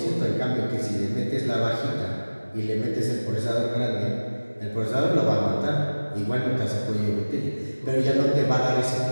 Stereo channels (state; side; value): inverted; both; correlation -1.00